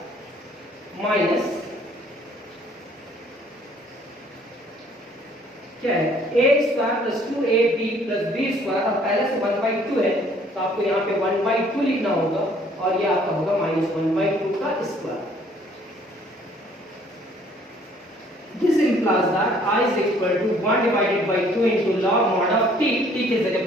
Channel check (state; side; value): normal; both; correlation 0.59